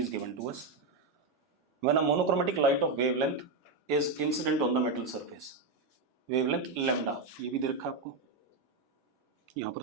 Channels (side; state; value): left; quieter; 3.6 dB